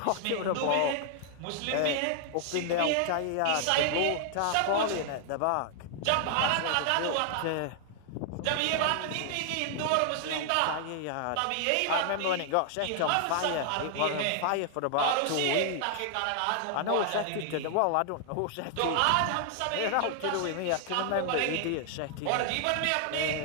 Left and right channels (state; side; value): different; both; correlation 0.00